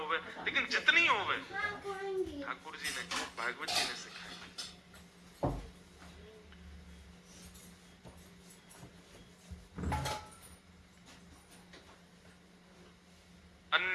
लेकिन जितनी होवे ठाकुर जी ने, भागवत जी ने सिखाई।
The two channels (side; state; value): both; identical; correlation 1.00